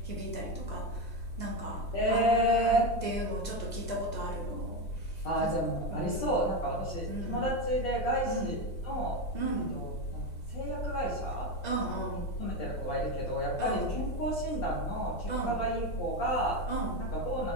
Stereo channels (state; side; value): late; right; 5.7 ms